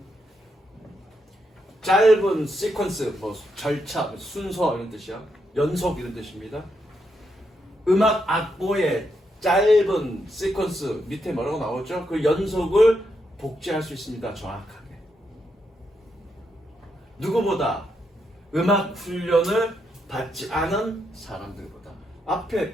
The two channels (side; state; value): both; normal; correlation 0.81